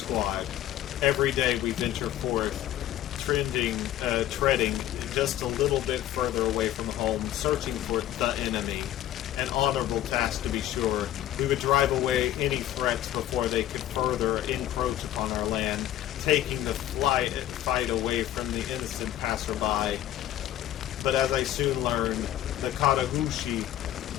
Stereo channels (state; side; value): quieter; right; 12.8 dB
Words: Every day we venture forth, treading just a little bit further away from home, searching for the enemy. An honorable task, to be sure. We would drive away any threats before they could further encroach upon our land, taking the fight away from the innocent passerby. But as I soon learned, the Katagushi